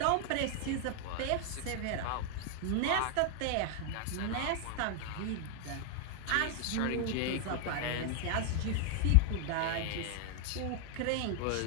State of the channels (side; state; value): both; different; correlation 0.00